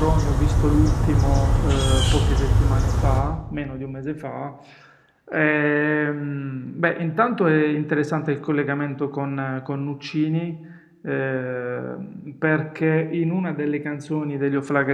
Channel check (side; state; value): both; identical; correlation 1.00